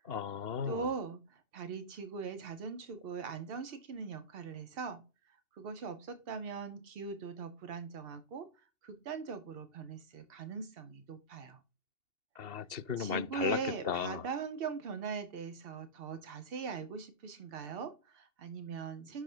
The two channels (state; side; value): late; left; 2.7 ms